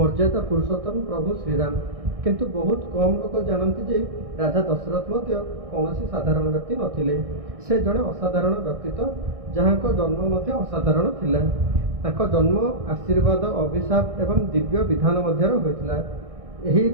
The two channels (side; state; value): left; late; 1.6 ms